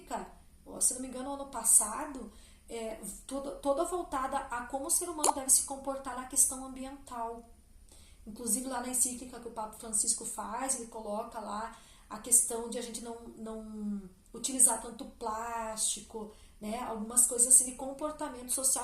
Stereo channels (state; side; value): identical; both; correlation 1.00